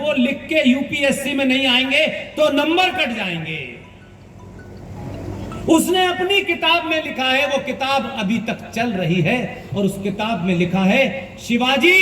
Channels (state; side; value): identical; both; correlation 1.00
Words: लिख के यूपीएससी में नहीं आएंगे तो नंबर कट जाएंगे। उसने अपनी किताब में लिखा है, वो किताब अभी तक चल रही है, और उस किताब में लिखा है शिवाजी